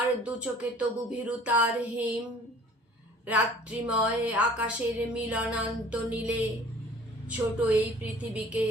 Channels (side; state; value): both; normal; correlation 0.50